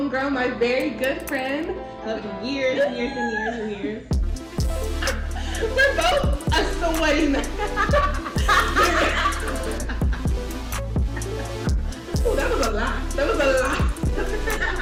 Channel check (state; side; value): identical; both; correlation 1.00